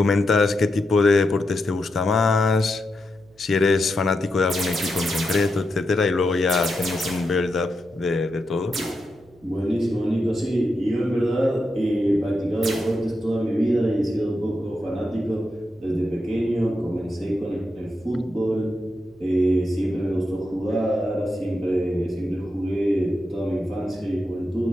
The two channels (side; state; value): right; noise; hum, 29 dB below the sound